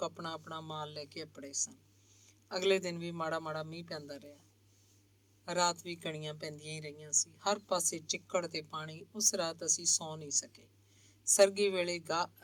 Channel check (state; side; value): identical; both; correlation 1.00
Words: ਆਪਣਾ ਆਪਣਾ ਮਾਲ ਲੈ ਕੇ ਅੱਪੜੇ ਸਨ। ਅਗਲੇ ਦਿਨ ਵੀ ਮਾੜਾ ਮਾੜਾ ਮੀਂਹ ਪੈਂਦਾ ਰਿਹਾ। ਰਾਤ ਵੀ ਕਣੀਆਂ ਪੈਂਦੀਆਂ ਹੀ ਰਹੀਆਂ ਸੀ। ਹਰ ਪਾਸੇ ਚਿੱਕੜ ਤੇ ਪਾਣੀ। ਉਸ ਰਾਤ ਅਸੀਂ ਸੌਂ ਨਹੀਂ ਸਕੇ। ਸਰਗੀ ਵੇਲੇ